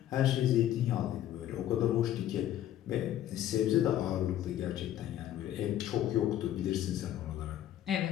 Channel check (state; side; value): quieter; right; 12.1 dB